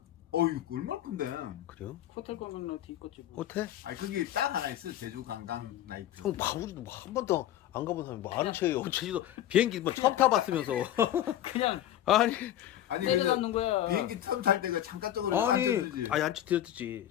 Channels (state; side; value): quieter; right; 12.3 dB